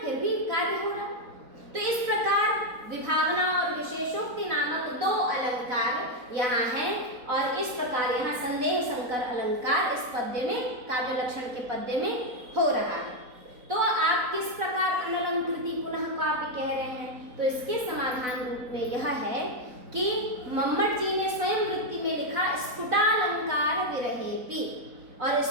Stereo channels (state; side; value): late; left; 4.0 ms